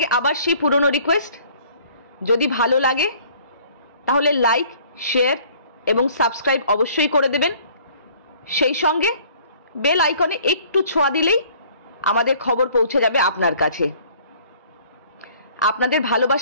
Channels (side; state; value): both; inverted; correlation -0.55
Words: आबार सेई पुरानो रिक्वेस्ट, यदि भालो लागे ताहले लाइक शेयर एवं सबस्क्राइब अवश्यई करे देबेन। सेई संगे बेल आइकने एकटू छोঁয়া दिलेई आमादेर खबर पौঁছে যাবে আপনার কাছে। আপনাদের